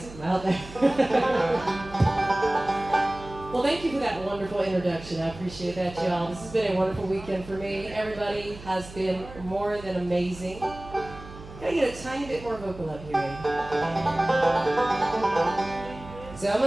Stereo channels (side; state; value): right; noise; hum, 16 dB below the sound